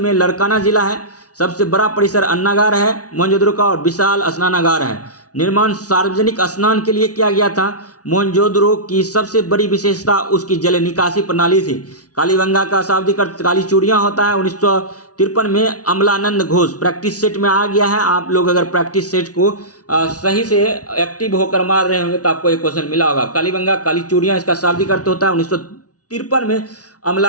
लरकाना जिला है। सबसे बड़ा परिसर अन्नागार है मोहनजोदड़ो का, और विशाल स्नानागार है। निर्माण सार्वजनिक स्नान के लिए किया गया था। मोहनजोदड़ो की सबसे बड़ी विशेषता उसकी जल निकासी प्रणाली थी। कालीबंगा का शाब्दिक अर्थ काली चूड़ियां होता है। 1953 में अमलानंद घोष प्रैक्टिस सेट में आ गया है। आप लोग अगर प्रैक्टिस सेट को सही से एक्टिव होकर मार रहे होंगे तो आपको एक क्वेश्चन मिला होगा। कालीबंगा काली चूड़ियां इसका शाब्दिक अर्थ होता है। 1953 में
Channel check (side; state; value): right; late; 0.68 ms